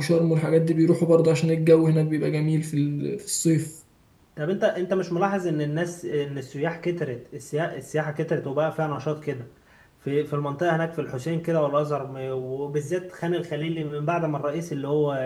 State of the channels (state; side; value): identical; both; correlation 1.00